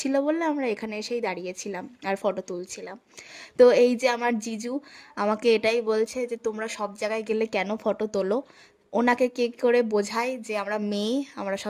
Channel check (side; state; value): both; identical; correlation 1.00